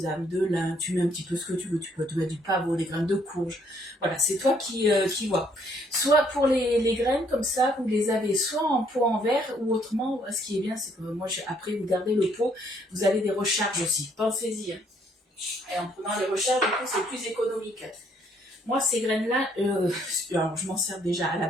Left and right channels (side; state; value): both; normal; correlation 0.67